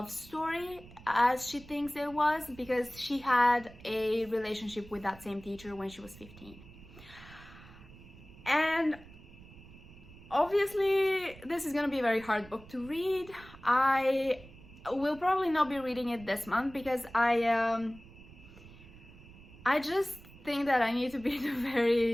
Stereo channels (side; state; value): right; noise; rumble, 20 dB below the sound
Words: story, as she thinks it was, because she had a relationship with that same teacher when she was 15. And obviously this is gonna be a very hard book to read. I will probably not be reading it this month because I just think that I need to be in a